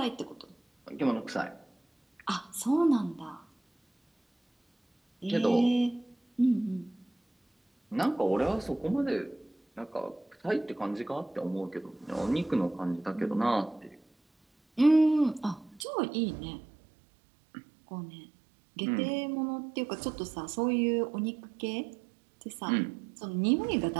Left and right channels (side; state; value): left; drops out; at 15.9 s